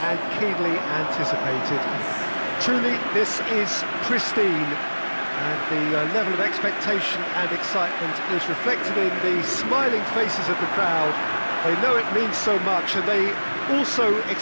keenly anticipated. Truly, this is pristine, and the level of expectation and excitement is reflected in the smiling faces of the crowd. They know it means so much, and they also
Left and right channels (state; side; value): inverted; both; correlation -1.00